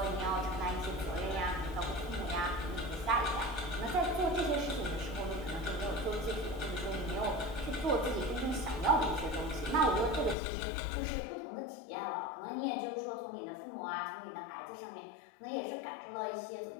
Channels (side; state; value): right; drops out; at 10.4 s